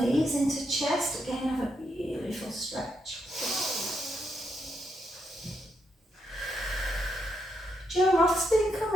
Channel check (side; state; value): both; normal; correlation 0.80